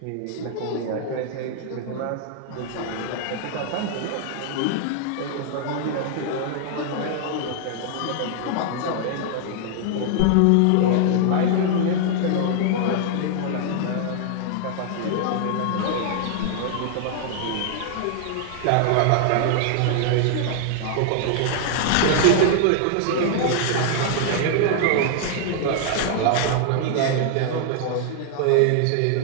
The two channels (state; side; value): different; both; correlation -0.01